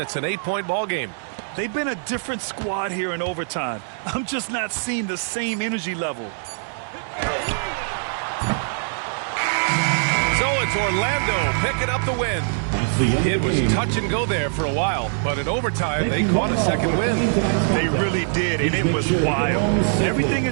it's an 8-point ball game. They've been a different squad here in overtime. I'm just not seeing the same energy level. So it's Orlando picking up the win. It was touch and go there for a while, but in overtime, they caught a second win. They really did, and it was wild. Everything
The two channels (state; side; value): silent; left; 64 dB below the other